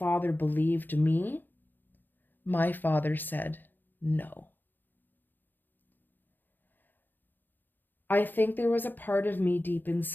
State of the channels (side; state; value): right; late; 0.090 ms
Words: believed me, my father said no. I think there was a part of me deep